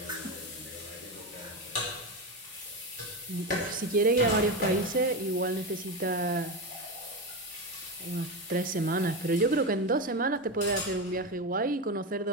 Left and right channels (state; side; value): normal; both; correlation 0.17